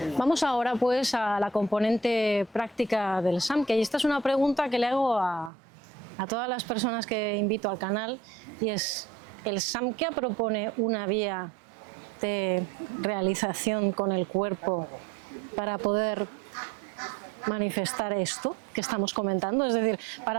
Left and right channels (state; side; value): drops out; left; at 5.5 s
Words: Vamos ahora pues a la componente práctica del Samkhya, y esta es una pregunta que le hago a todas las personas que invito al canal, y es: ¿el Samkhya propone una vía de realización con el cuerpo para poder manifestar esto que estamos comentando? Es decir,